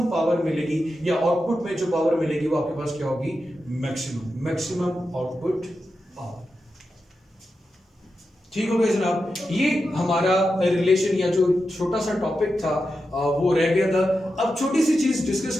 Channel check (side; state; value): both; normal; correlation 0.89